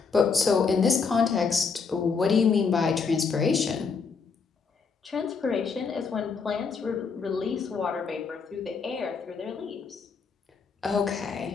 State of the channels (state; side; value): quieter; right; 5.3 dB